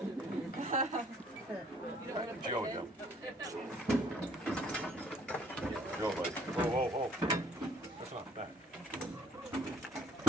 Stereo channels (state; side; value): normal; both; correlation 0.61